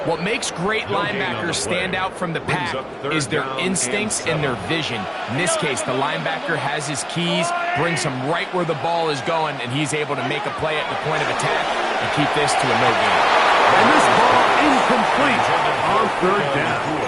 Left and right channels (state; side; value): identical; both; correlation 1.00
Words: What makes great linebackers stand out from the pack is their instincts and their vision. In this case, the linebacker has his keys, brings him right where the ball is going, and he's able to make a play at the point of attack and keep this to a no gain. And this ball incomplete on 3rd down.